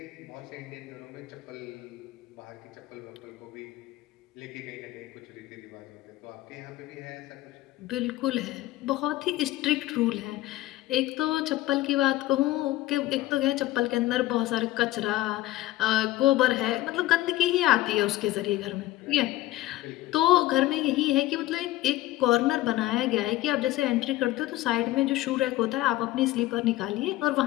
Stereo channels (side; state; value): right; quieter; 16.4 dB